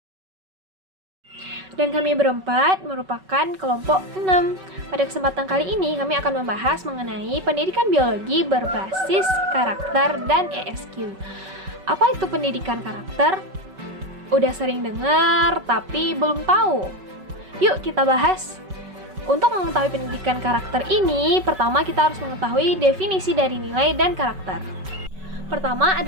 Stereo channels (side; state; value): left; late; 5.3 ms